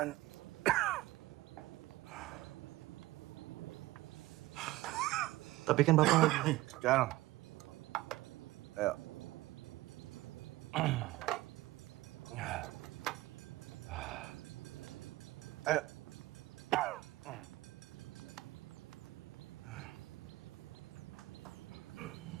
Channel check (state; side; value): quieter; left; 18.2 dB